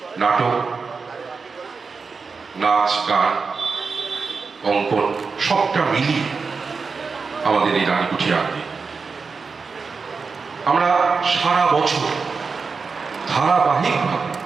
নাটক, নাচ, গান, অঙ্কন সবটা মিলিয়ে আমাদের এই রানীকুঠি আঙ্গিক। আমরা সারা বছর ধারাবাহিকভাবে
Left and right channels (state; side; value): quieter; left; 4.8 dB